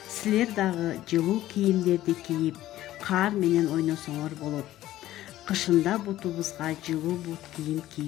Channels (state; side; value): quieter; right; 14.4 dB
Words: Силер дагы жылуу кийимдерди кийип, каар менен ойносоңор болот. Кышында бутубузга жылуу бут кийим